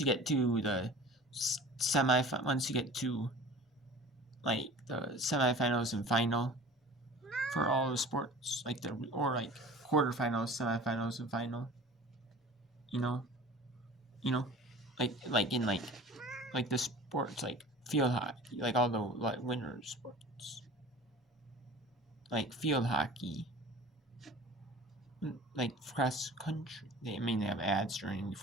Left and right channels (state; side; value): normal; both; correlation 0.42